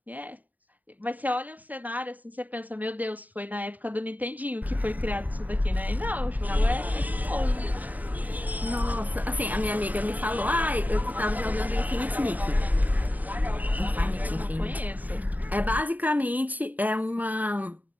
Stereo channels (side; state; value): left; late; 0.080 ms